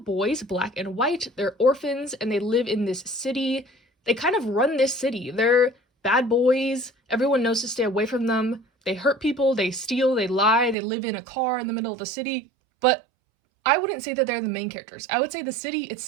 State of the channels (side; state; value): left; drops out; at 10.8 s